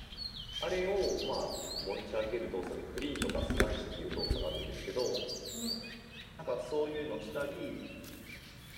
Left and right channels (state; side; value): identical; both; correlation 1.00